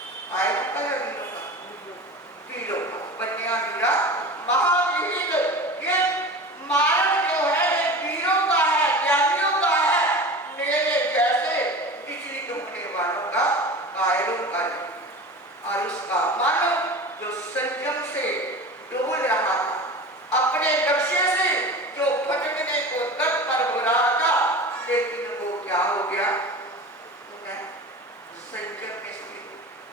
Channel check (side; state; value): both; normal; correlation 0.33